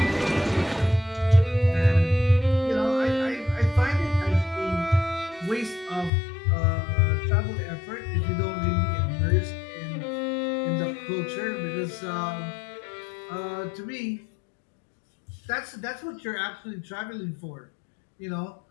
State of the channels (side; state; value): right; drops out; at 6.1 s